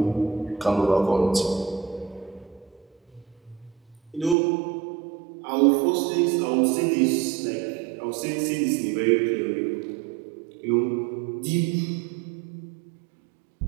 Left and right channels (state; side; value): drops out; left; at 4.4 s